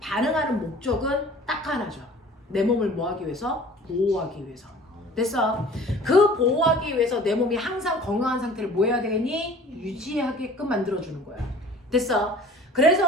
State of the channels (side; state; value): both; normal; correlation 0.46